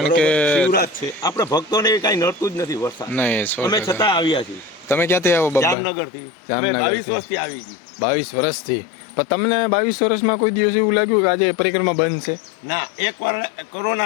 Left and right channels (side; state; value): right; drops out; at 5.8 s